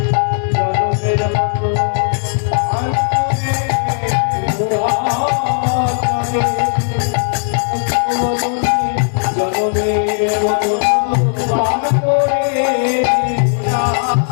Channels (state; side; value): silent; right; 62 dB below the other